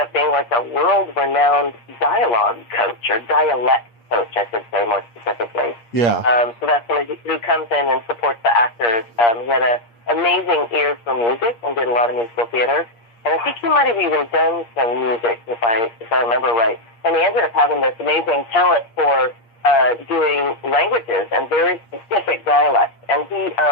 being like a world-renowned dialogue coach, or dialect coach, I should say more specifically. Yeah. So that's somebody who comes in and supports the actors. He had an amazing ear for music and did a lot of musical theater. And I think he might have even done some music, if I remember right. And he ended up having this amazing talent for doing languages and very specific dialects. And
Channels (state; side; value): late; right; 8.6 ms